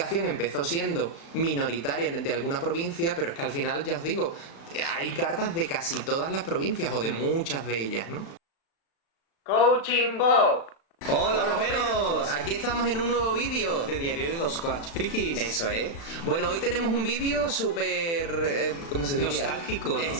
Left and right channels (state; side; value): late; right; 36 ms